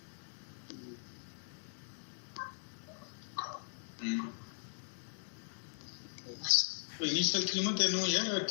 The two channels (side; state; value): right; silent; digital silence